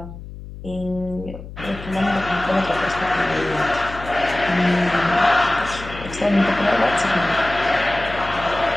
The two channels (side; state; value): left; noise; hum, 13 dB below the sound